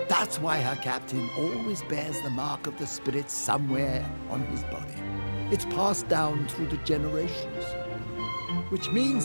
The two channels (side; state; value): both; inverted; correlation -1.00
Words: That's why her captain always bears the mark of the spirit somewhere on his body. It's passed down through the generations. Which